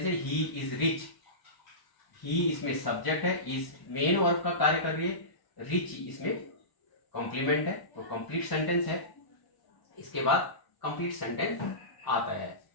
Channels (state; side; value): late; right; 1.1 ms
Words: है ही इज रिच. ही इसमें सब्जेक्ट है, इज मेन वर्ब का कार्य कर रही है, रिच इसमें कॉम्प्लीमेंट है, तो कंप्लीट सेंटेंस है. इसके बाद कंप्लीट सेंटेंस आता है.